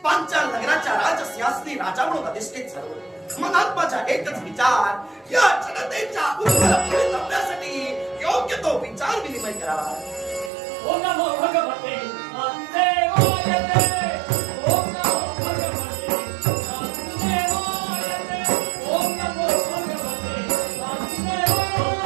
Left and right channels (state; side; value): drops out; left; at 10.5 s